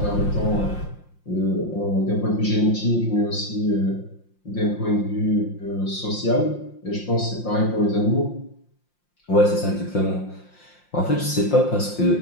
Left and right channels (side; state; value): right; late; 5.7 ms